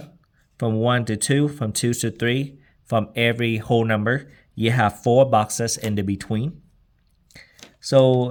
from 1 to 2, from 2 to 3, from every whole number, you have 4 boxes in the between.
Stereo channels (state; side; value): identical; both; correlation 1.00